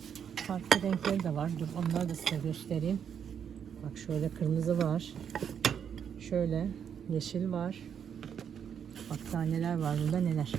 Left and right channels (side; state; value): left; quieter; 8.0 dB